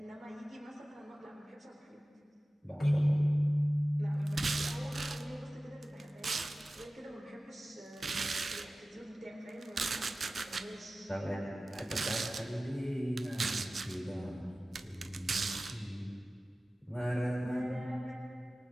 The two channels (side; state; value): both; normal; correlation 0.96